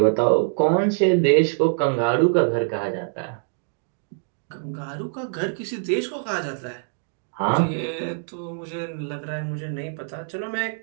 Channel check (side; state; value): left; silent; digital silence